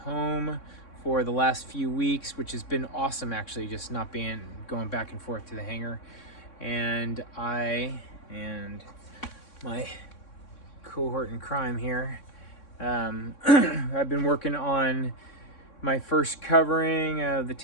for the last few weeks, which has been awesome actually, just not going back and forth to the hangar. And I and my cohort in crime here, I've been working on my first covering of the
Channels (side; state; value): right; late; 3.6 ms